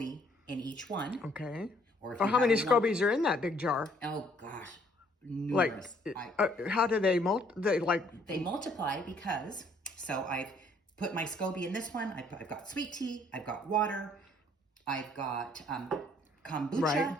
in each one. Okay. Or how many SCOBYs are in that big jar? Oh gosh, numerous. How do they They multiply because, so I've put my SCOBY in this one. I've got sweet tea, I've got water, I've got kombucha,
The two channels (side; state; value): both; normal; correlation 0.63